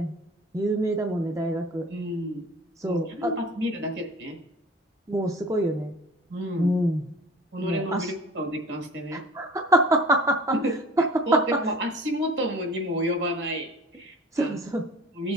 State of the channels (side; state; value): both; normal; correlation 0.44